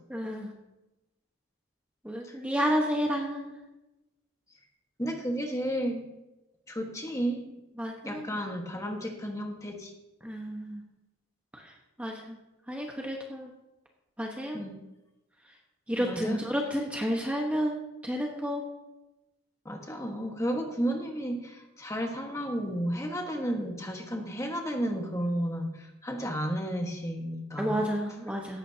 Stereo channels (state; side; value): normal; both; correlation 0.81